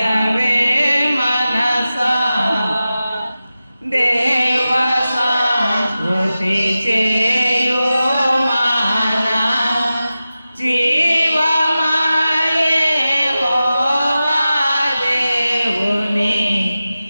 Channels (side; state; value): both; inverted; correlation -0.94